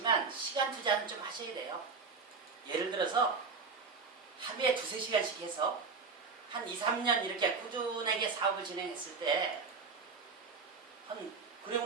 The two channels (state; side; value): quieter; left; 4.8 dB